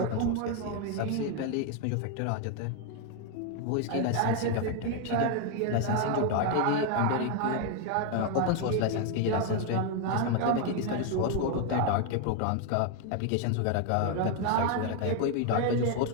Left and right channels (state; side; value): different; both; correlation 0.01